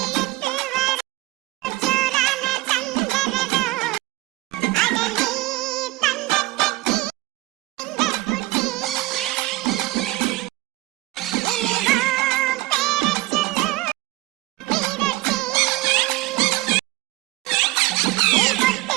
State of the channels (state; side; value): quieter; left; 19.6 dB